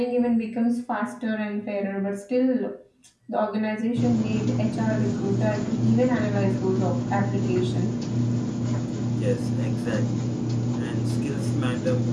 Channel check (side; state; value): both; identical; correlation 1.00